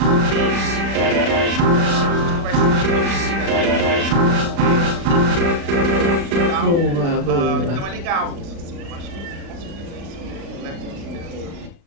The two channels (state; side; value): late; left; 36 ms